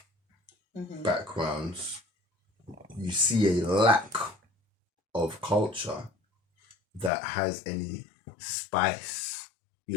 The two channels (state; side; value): drops out; right; at 7.1 s